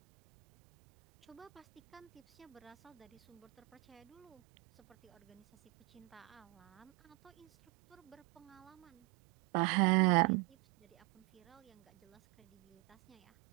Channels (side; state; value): left; quieter; 25.9 dB